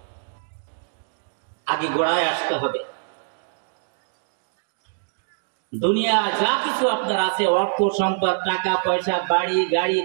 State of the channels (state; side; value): silent; left; digital silence